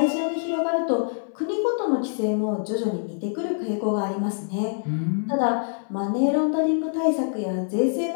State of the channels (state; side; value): silent; right; 62 dB below the other